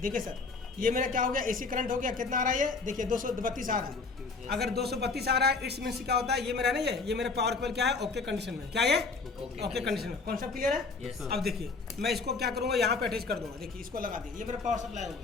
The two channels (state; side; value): quieter; right; 4.1 dB